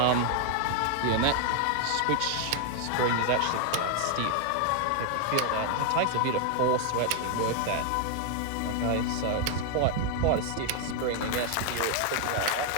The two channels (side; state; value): both; different; correlation 0.00